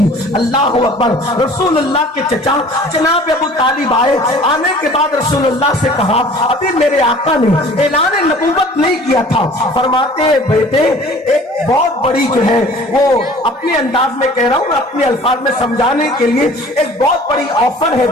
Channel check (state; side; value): normal; both; correlation 0.48